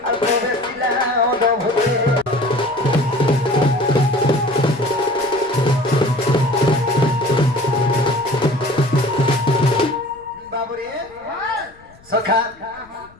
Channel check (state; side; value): noise; left; rumble, 27 dB below the sound